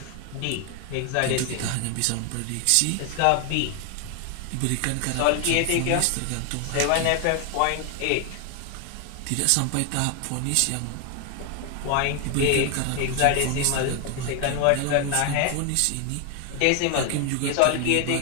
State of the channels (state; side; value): different; both; correlation 0.01